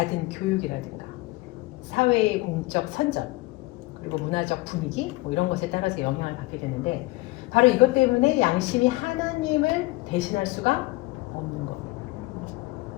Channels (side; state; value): right; quieter; 21.3 dB